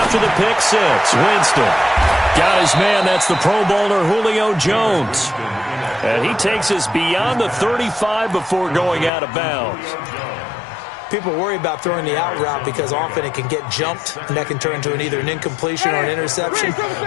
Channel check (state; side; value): drops out; right; at 9.1 s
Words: the pick 6. Winston got his man. That's the Pro Bowler Julio Jones. And he takes us beyond the 35 before going out of bounds. People worry about throwing the out route because often it can get jumped, and that can turn into either an incompletion or an interception.